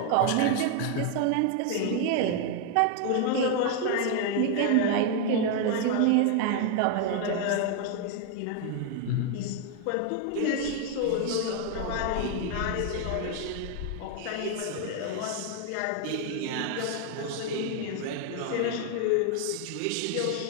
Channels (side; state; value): both; different; correlation 0.00